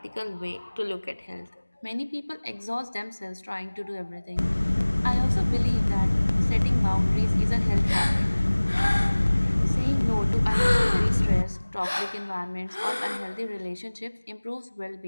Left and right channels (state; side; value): inverted; both; correlation -1.00